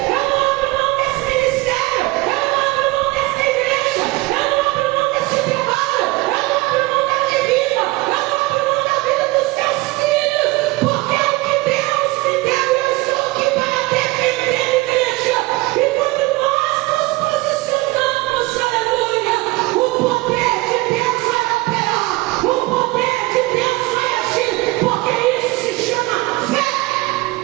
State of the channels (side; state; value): left; quieter; 21.6 dB